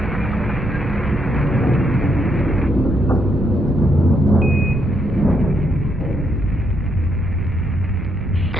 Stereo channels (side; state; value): right; noise; rumble, 8 dB below the sound